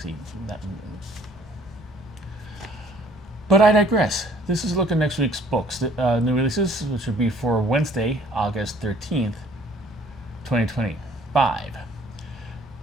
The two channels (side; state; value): both; normal; correlation 0.57